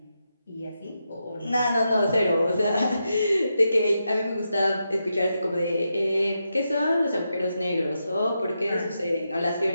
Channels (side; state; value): both; inverted; correlation -0.86